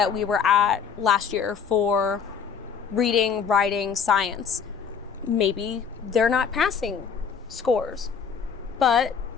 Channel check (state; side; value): quieter; right; 6.6 dB